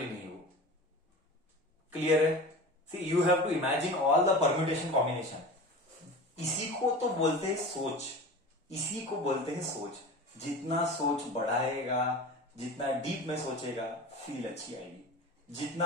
नहीं. वो क्लियर है? See, you have to imagine all the permutation combination. इसी को तो बोलते हैं सोच, इसी को बोलते हैं सोच. जितना सोच बढ़ाएगा, जितना डीप में सोचेगा, फील अच्छी आएगी।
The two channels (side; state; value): both; normal; correlation 0.33